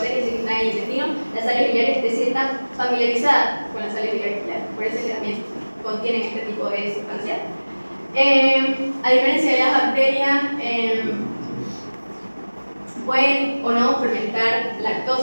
que están en el intestino. Las sales biliares, es decir, están familiarizadas con las sales biliares, por eso es que también contienen este tipo de sustancias. A diferencia de las bacterias, pueden o no fermentar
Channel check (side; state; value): both; inverted; correlation -1.00